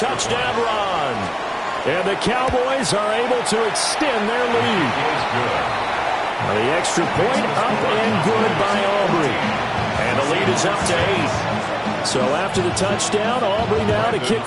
run. And the Cowboys are able to extend their lead. The extra point up and good by Aubrey. And the lead is up to 8. So after the touchdown, Aubrey now to kick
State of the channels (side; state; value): both; identical; correlation 1.00